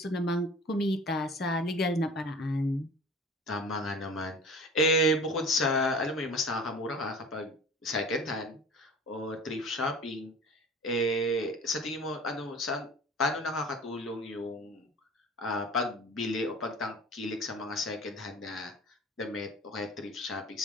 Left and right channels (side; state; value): both; normal; correlation 0.41